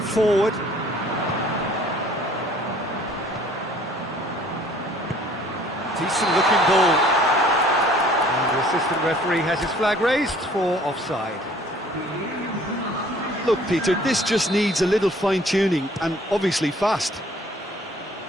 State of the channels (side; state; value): both; normal; correlation 0.55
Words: forward. Decent looking ball. And the assistant referee has his flag raised for offside. Look, Peter, this just needs a little fine-tuning, and obviously fast.